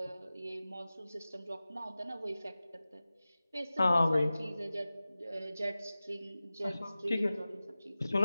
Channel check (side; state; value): both; inverted; correlation -0.96